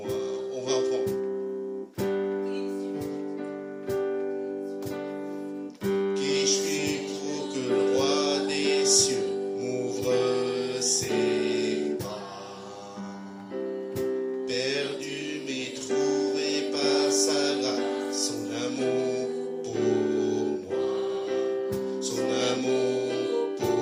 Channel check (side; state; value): both; identical; correlation 1.00